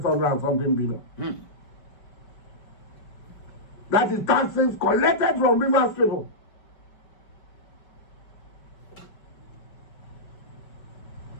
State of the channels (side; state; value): right; late; 5.2 ms